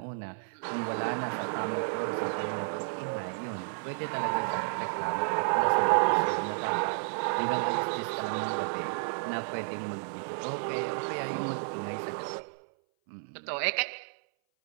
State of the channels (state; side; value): silent; left; 57 dB below the other